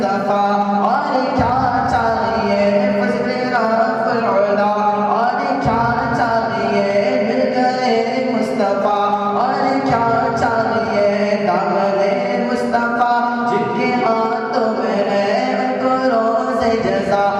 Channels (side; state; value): both; identical; correlation 1.00